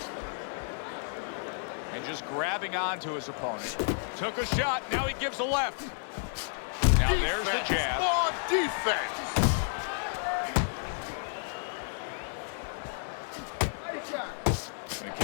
And just grabbing onto his opponent. Took a shot, now he gives a left. Now there's the jab. More defense. And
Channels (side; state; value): right; silent; digital silence